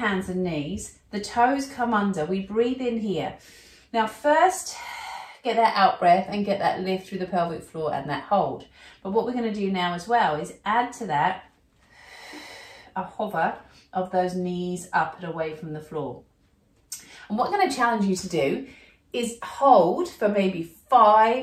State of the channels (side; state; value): both; identical; correlation 1.00